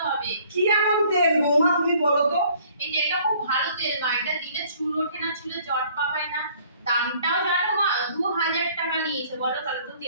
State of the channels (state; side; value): inverted; both; correlation -0.57